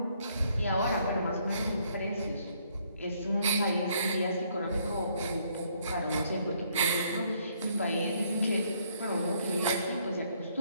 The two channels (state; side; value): inverted; both; correlation -0.68